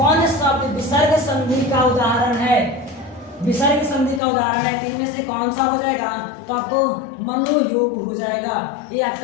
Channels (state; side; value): drops out; right; at 4.2 s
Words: शब्द विसर्ग संधि का उदाहरण है? विसर्ग संधि का उदाहरण है, तीन में से कौन सा हो जाएगा? तो आपको मनोयोग हो जाएगा। ये